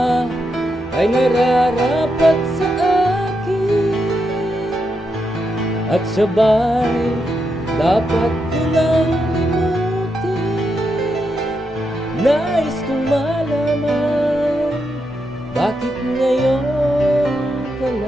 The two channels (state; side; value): normal; both; correlation 0.84